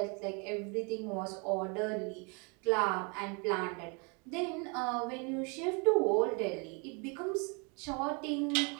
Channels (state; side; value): quieter; left; 33.5 dB